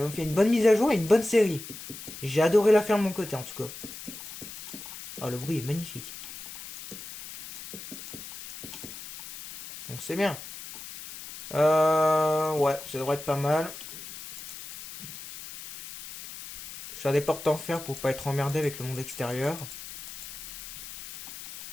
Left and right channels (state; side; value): noise; left; hiss, 12 dB below the sound